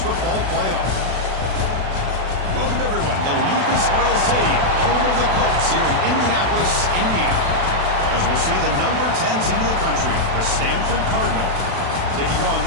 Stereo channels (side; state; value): left; late; 36 ms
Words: football playoff. Welcome, everyone, to Lucas Oil Stadium, home of the Colts here in Indianapolis, Indiana. As we'll see the number 10 team in the country, the Stanford Cardinal, taking on